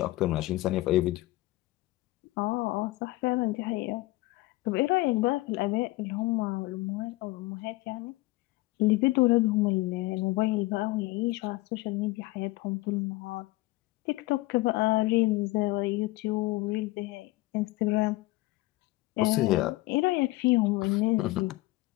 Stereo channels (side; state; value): right; quieter; 19.9 dB